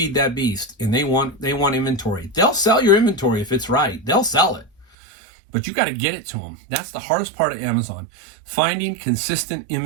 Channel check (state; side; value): drops out; left; at 4.9 s